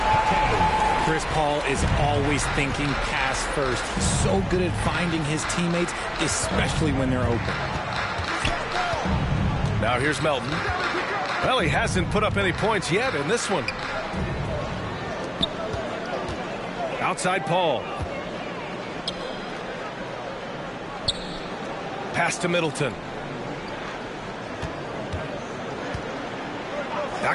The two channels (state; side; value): identical; both; correlation 1.00